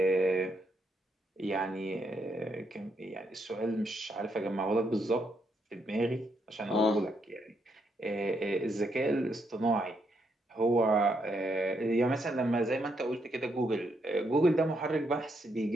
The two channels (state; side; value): normal; both; correlation 0.77